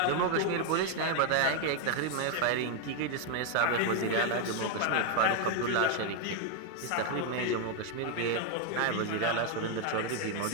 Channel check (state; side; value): different; both; correlation 0.01